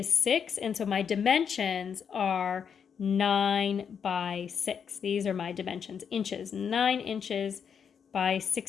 6. And so my dimensions are 9 by 6. These are my dimensions, inches. 9 inches by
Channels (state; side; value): quieter; right; 7.2 dB